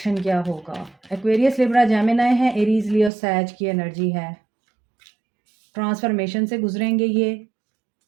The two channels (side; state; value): left; drops out; at 3.1 s